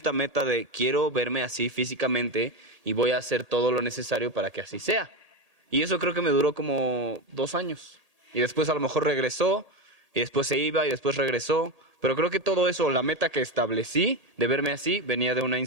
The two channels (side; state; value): left; late; 1.7 ms